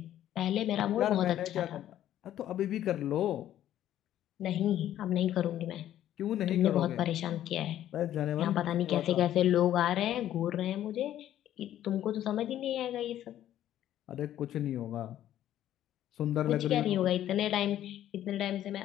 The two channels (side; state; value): right; quieter; 12.1 dB